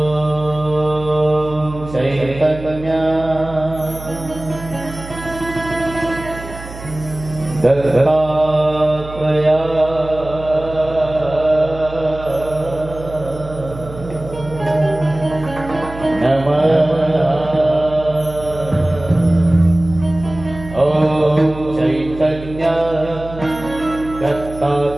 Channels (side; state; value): right; noise; hum, 13 dB below the sound